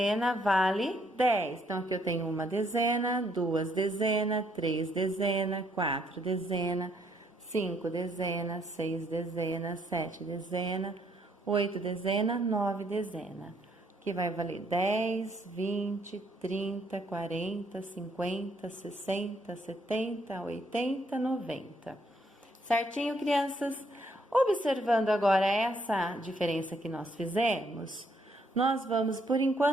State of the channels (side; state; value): both; normal; correlation 0.70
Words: vale 10. Então, aqui eu tenho uma dezena, 2 dezenas, 3 dezenas, 4 dezenas, 5 dezenas, 6 dezenas, 7 dezenas, 8 dezenas, 9 dezenas. Que vai valer 10, 20, 30, 40, 50, 60, 70, 80, 90. Certinho, crianças? Observando agora essa diferença que nós fizemos, nós vamos, por